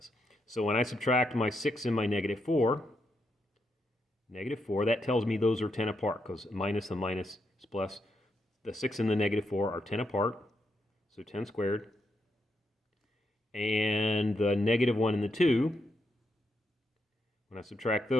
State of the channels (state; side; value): normal; both; correlation 0.81